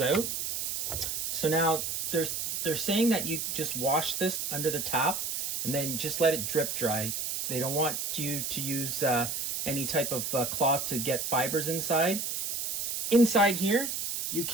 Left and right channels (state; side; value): noise; right; hiss, 2 dB below the sound